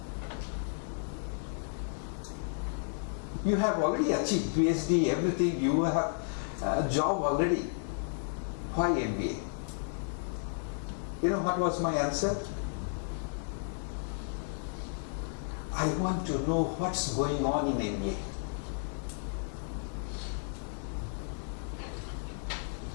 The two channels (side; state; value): right; silent; 56 dB below the other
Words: You have already achieved PhD, everything, you have a job already. Why MBA? You know what was my answer? I want to know what's going on in MBA.